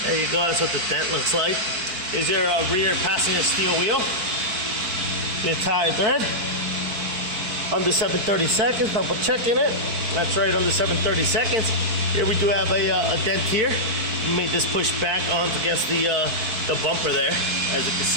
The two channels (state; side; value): late; left; 4.5 ms